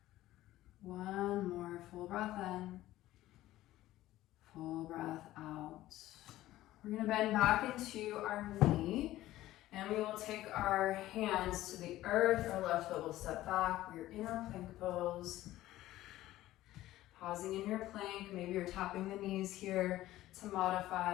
One more full breath in, full breath out. We're going to bend back into our knee, and we will take our hands to the earth. Our left foot will step back. We're in our plank pose. Pausing in your plank, maybe you're tapping the knees here to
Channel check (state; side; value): quieter; right; 15.3 dB